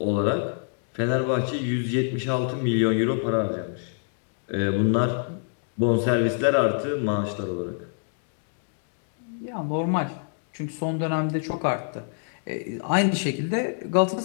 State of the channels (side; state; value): right; silent; digital silence